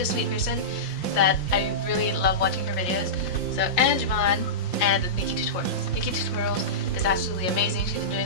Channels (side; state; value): right; late; 5.7 ms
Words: a sweet person that I really love watching her videos. So, and Vaughn, and Nikki Tutorials. Nikki Tutorials is absolutely amazing. She's been